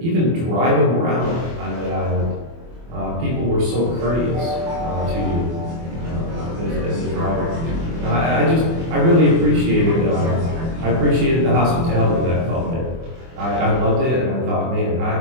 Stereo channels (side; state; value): left; late; 24 ms